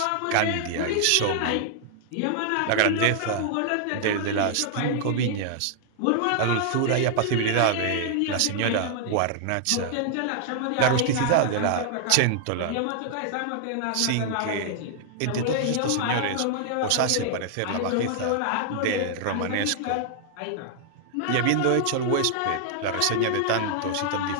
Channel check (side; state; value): both; different; correlation -0.01